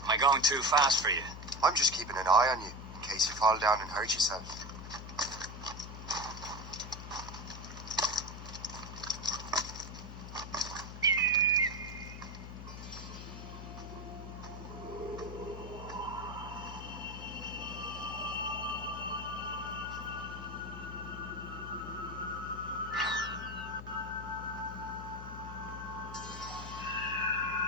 Am I going too fast for you? I'm just keeping an eye on you, in case you fall down and hurt yourself.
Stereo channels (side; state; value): left; noise; hum, 10 dB below the sound